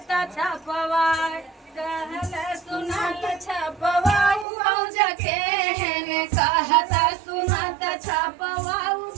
छपवाई कहले सुनात छपवाऊ बौज के हेने कहता सुनात छपवाऊ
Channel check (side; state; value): left; drops out; at 4.5 s